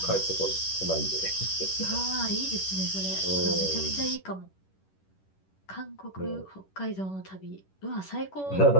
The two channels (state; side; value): late; right; 11 ms